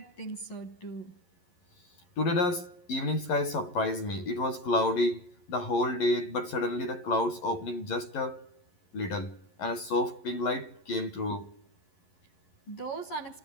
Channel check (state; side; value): late; right; 11 ms